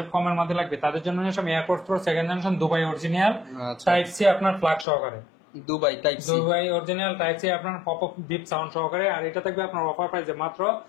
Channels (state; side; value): drops out; right; at 4.9 s